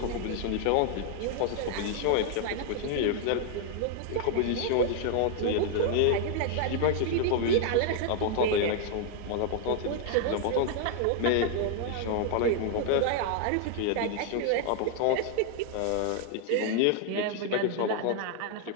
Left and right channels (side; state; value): both; different; correlation 0.00